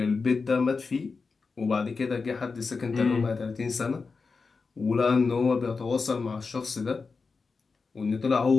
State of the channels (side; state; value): right; quieter; 4.6 dB